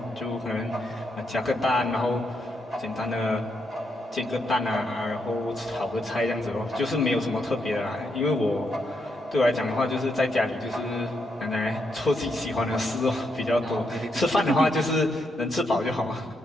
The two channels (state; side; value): normal; both; correlation 0.79